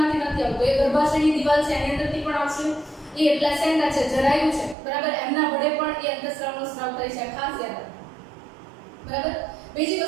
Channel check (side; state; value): left; drops out; at 4.8 s